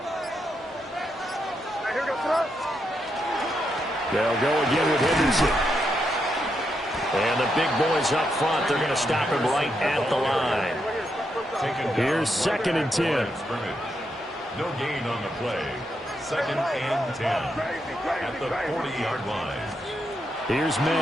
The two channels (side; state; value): both; normal; correlation 0.82